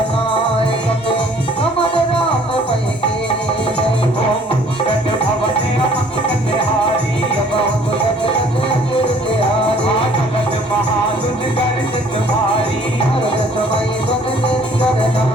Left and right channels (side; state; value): both; normal; correlation 0.57